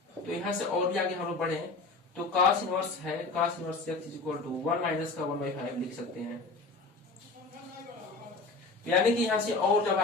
तो यहाँ से और भी आगे हम लोग बढ़े, तो cos इनवर्स है, cos inverse x is equal to 1 minus का 1/5 लिख सकते हैं। यानी कि यहाँ से और जब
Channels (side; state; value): right; quieter; 3.7 dB